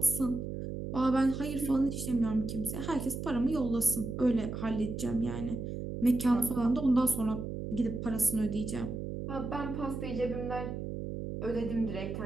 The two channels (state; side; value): noise; right; hum, 6 dB below the sound